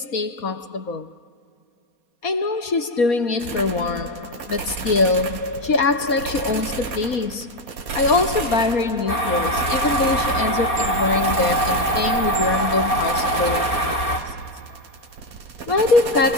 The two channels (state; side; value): late; right; 4.2 ms